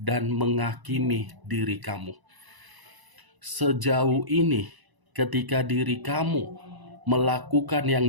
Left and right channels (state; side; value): late; left; 1.0 ms